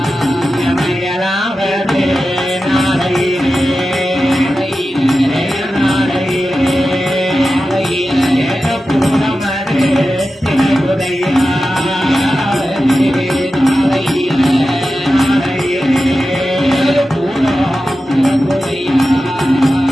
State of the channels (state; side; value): normal; both; correlation 0.92